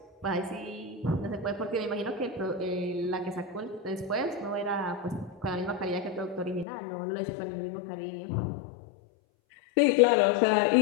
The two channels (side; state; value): right; drops out; at 6.7 s